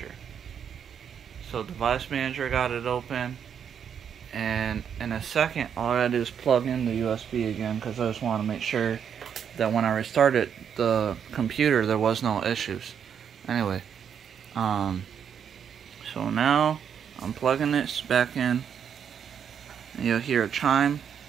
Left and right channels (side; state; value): left; quieter; 8.0 dB